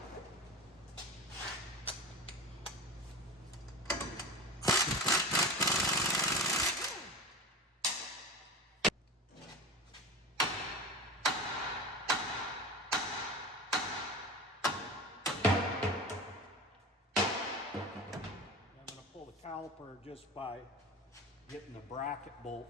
going to pull the caliper just by getting the bracket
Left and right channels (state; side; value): normal; both; correlation 0.29